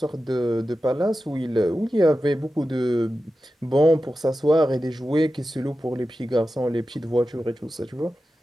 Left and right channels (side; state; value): both; normal; correlation 0.92